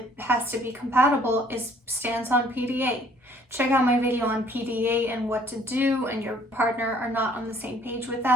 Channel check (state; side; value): normal; both; correlation 0.59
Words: has to be compatible is stance on PDA. Check out my video on PDA and what to do, and your partner are not on the same page with